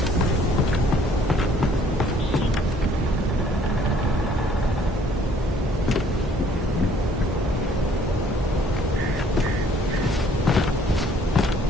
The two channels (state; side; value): normal; both; correlation 0.60